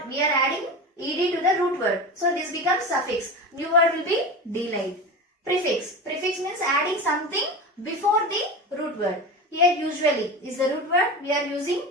we are adding, ed to the root word. So this becomes suffix. New word will be delayed. Prefix. Prefix means adding something before the root word. Here usually is the root word.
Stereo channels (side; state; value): both; normal; correlation 0.27